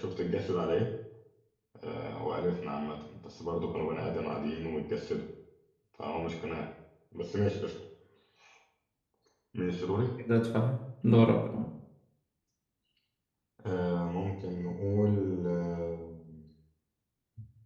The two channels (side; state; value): both; identical; correlation 1.00